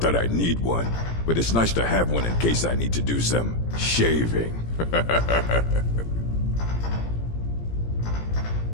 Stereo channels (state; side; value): late; right; 17 ms